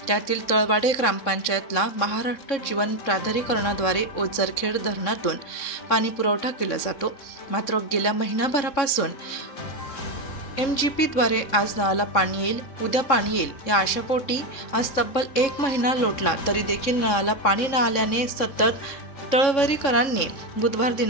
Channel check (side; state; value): right; late; 3.7 ms